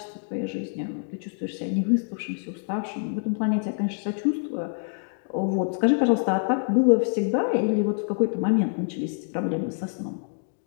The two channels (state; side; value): silent; right; digital silence